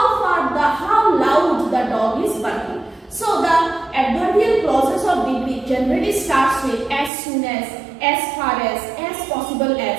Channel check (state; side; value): drops out; left; at 7.1 s